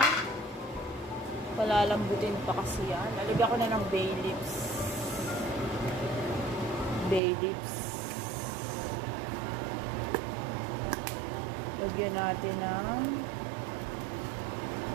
palalambutin pa kasi yan. Lalagyan ko na ng bay leaves. Lagyan natin ng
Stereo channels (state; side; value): drops out; left; at 7.2 s